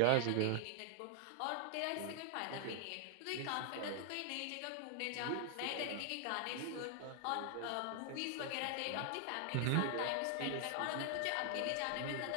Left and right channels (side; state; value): both; different; correlation 0.00